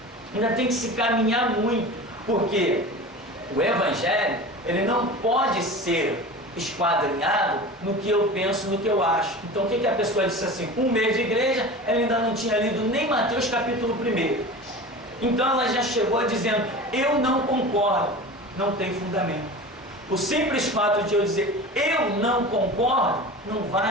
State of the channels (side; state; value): both; normal; correlation 0.34